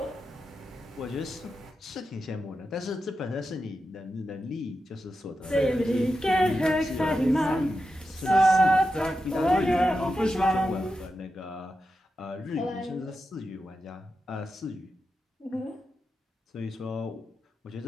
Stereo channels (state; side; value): normal; both; correlation 0.89